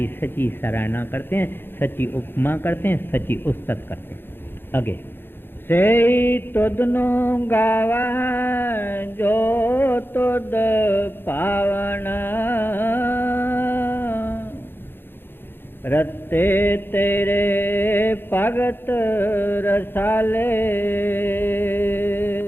सच्ची सराहना करते हैं, सच्ची उपमा करते हैं, सच्ची उस्तत करते हैं। आगे से तुदनो गावा जो तुद पावन, रत्ते तेरे भगत रसाले,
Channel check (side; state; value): right; late; 0.10 ms